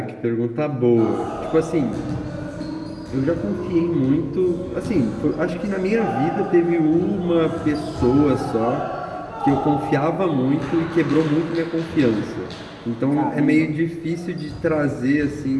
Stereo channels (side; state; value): both; identical; correlation 1.00